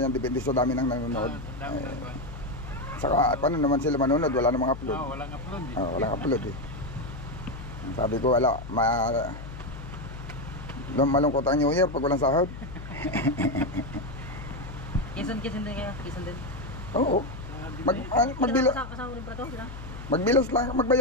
depende sa dami ng nanonood. Saka paano naman sila manonood, wala namang upload. Walang upload eh. Walang upload eh. Sabi ko wala, malungkot ang New Year pag walang sahod. Kisan din kaya, kisan din. Oo. Magbilas. Kasama rin pa to sila. Magbilas lang,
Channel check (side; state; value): left; noise; hum, 11 dB below the sound